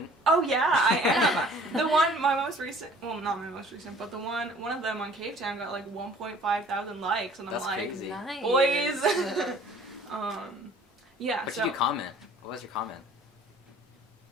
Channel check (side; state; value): both; normal; correlation 0.52